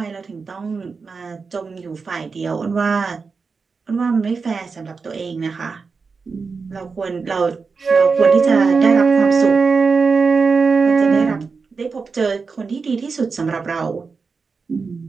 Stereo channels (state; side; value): quieter; left; 4.9 dB